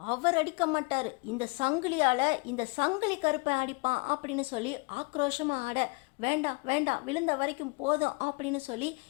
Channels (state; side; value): quieter; right; 29.7 dB